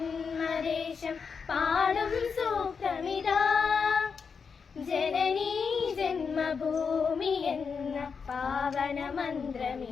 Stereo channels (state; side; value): quieter; right; 5.7 dB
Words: പാടും സൂക്തമിതാ, ജനനീ ജന്മഭൂമി എന്ന പാവന